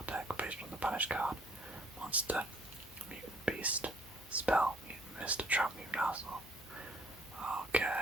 deck based on the banished card. Monster, mutant beast, spell, mutant mist, trap, mutant arsenal.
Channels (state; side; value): normal; both; correlation 0.61